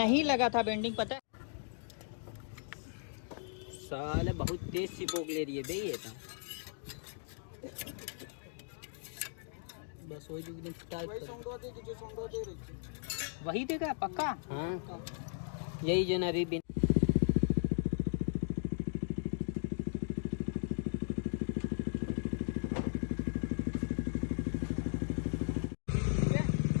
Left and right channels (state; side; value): silent; right; digital silence